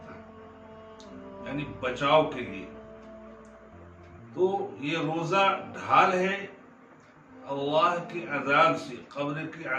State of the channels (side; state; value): both; identical; correlation 1.00